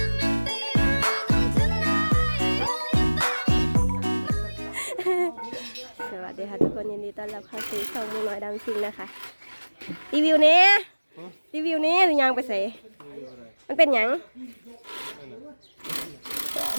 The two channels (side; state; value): both; inverted; correlation -1.00